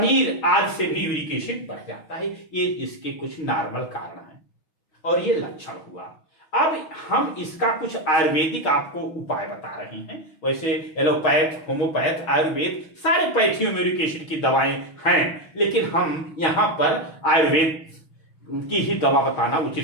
आदि से भी यूरिक एसिड बढ़ जाता है। ये इसके कुछ नॉर्मल कारण हैं और ये लक्षण हुआ। अब हम इसका कुछ आयुर्वेदिक आपको उपाय बता रहे हैं। वैसे एलोपैथ, होम्योपैथ, आयुर्वेद सारे पैथियों में यूरिक एसिड की दवाएं हैं, लेकिन हम यहाँ पर आयुर्वेद की ही दवा बताना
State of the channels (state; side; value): late; right; 6.3 ms